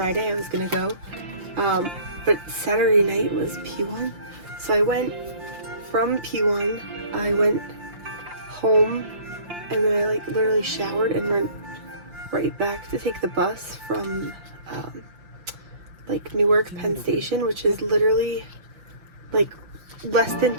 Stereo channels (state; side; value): late; left; 5.7 ms